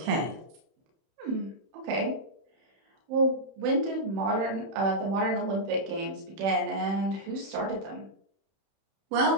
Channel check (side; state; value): left; late; 31 ms